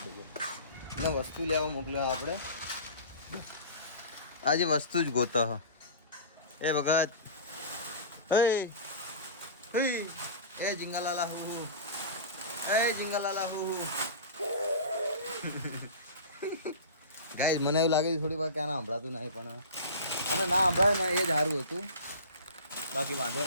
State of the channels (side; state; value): both; inverted; correlation -0.34